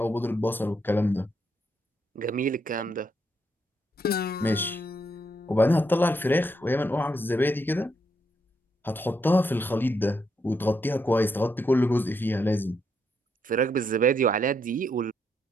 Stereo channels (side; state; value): both; normal; correlation 0.78